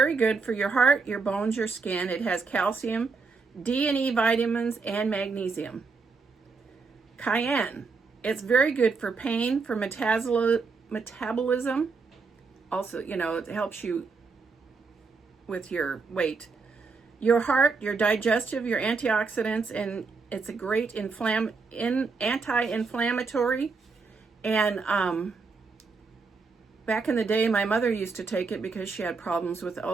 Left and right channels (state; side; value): quieter; left; 4.5 dB